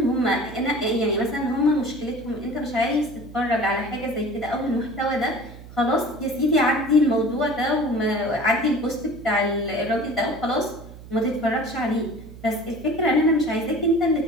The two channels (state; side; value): noise; right; hum, 16 dB below the sound